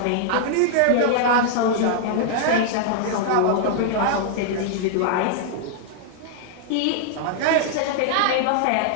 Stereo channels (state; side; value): different; both; correlation -0.01